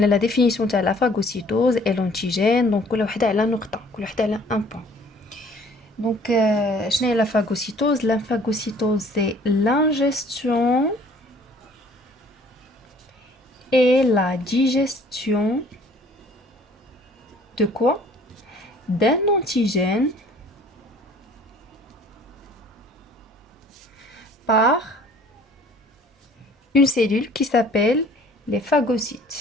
a la définition de la phagocytose et l'antigène. Donc كل وحده على نقطه، كل وحده على 1 point. Donc, qu'est-ce que la phagocytose? La phagocytose, c'est l'ingestion et la digestion de quoi? D'un antigène par une cellule qui s'appelle les phagocytes.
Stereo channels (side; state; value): both; normal; correlation 0.54